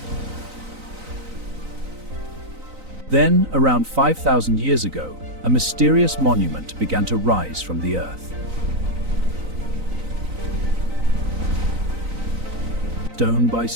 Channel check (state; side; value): late; left; 3.9 ms